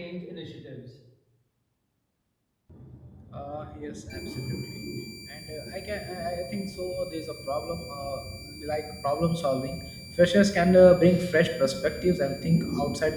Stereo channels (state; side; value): identical; both; correlation 1.00